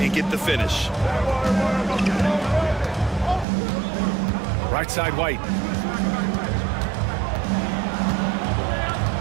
get the finish. Right side White.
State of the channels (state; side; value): drops out; left; at 3.5 s